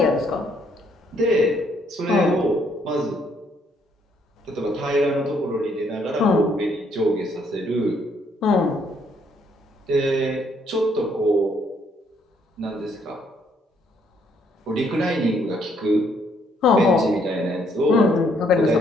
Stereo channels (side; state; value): both; normal; correlation 0.69